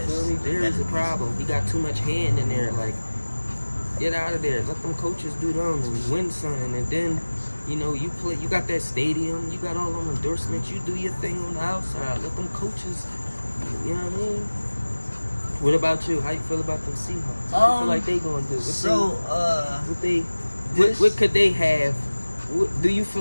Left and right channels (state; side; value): inverted; both; correlation -1.00